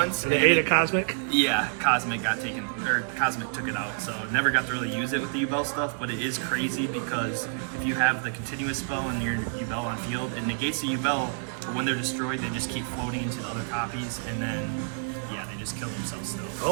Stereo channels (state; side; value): silent; left; 59 dB below the other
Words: The 8 of Cosmic. Yeah, Cosmic got taken, or Cosmic took it out, so never got to really use it with the Yubel stuff, but it is crazy because if you have the continuous spell and your Yubel on field, it negates the Yubel, but when they're destroyed, they just keep floating into the other copies, and then, yeah, they just kill themselves still.